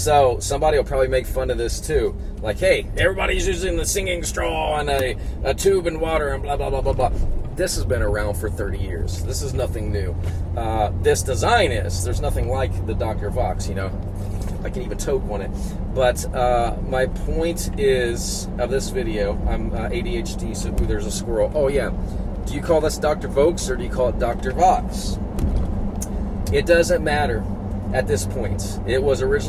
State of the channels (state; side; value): identical; both; correlation 1.00